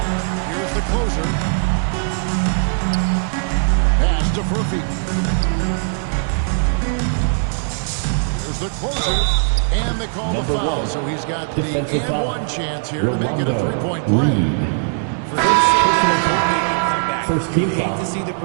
Here's the closer. Pass to Furphy. Here's the closer. And they call the foul, so he's got the and-one chance here to make it a 3-point play. For his sake, they can come back. You hate to see the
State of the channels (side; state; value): left; silent; digital silence